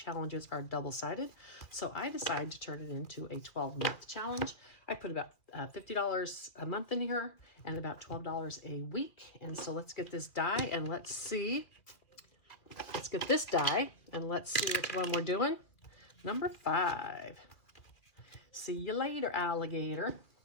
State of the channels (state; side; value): late; right; 2.5 ms